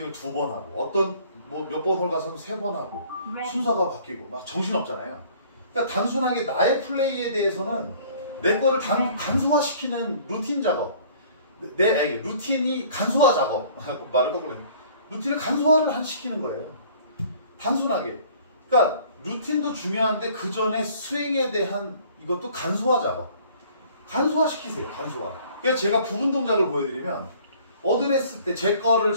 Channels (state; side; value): inverted; both; correlation -0.54